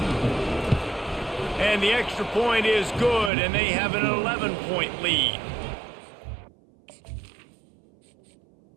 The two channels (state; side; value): drops out; left; at 3.3 s